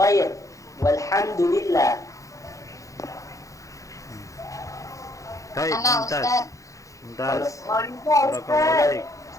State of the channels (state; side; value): late; right; 0.16 ms